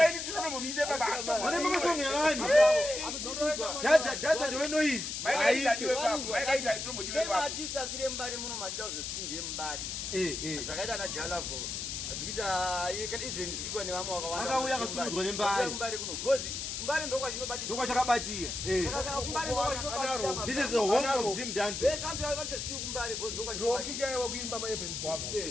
Init tinomumise baba. Vanobva masongo evani. Dadza ndiwe noise. Mike Init adiwe baba. Mike Init atomudiwe same baba. artist asire Mbare muno machida uzosviti ndiye Mbare Eh. zvakaita na Jalavo zvikuita even zvikuitwa nevamwe wakawanda Akauya akasumudzwa neMbare. Mbare kuno because Mbare ndokwachinobatira Ndokwachakabatira. This is the home of Zimdancehall. vese antu avatosiyi kuMbare because rokikaiwa kuimba maevent gwavo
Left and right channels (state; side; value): noise; left; hiss, 4 dB below the sound